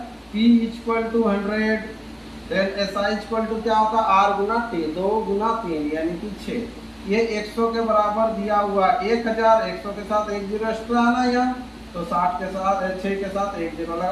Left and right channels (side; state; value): both; identical; correlation 1.00